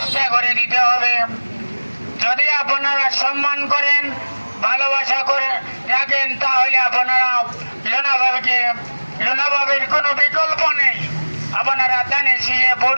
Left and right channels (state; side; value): inverted; both; correlation -1.00